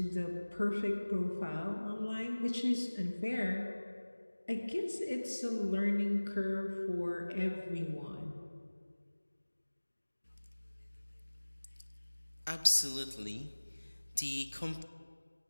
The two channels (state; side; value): inverted; both; correlation -1.00